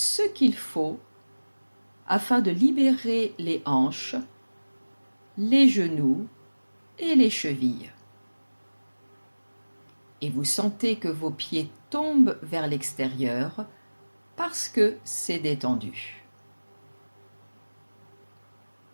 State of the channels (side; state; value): both; inverted; correlation -1.00